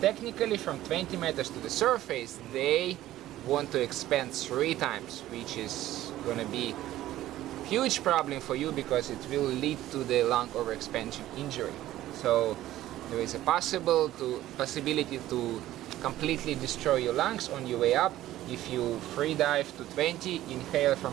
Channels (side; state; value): left; quieter; 14.4 dB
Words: technically from 20 meters to the surface, they want to expand 3 times, which is gonna be huge problem for you because it will lead to the lung overexpansion injury. So there is a possibility to completely destroy your lungs on your way up if you free dive to 20, inhale